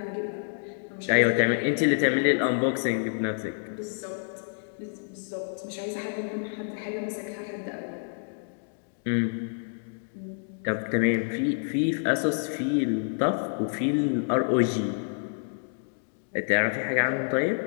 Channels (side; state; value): right; silent; digital silence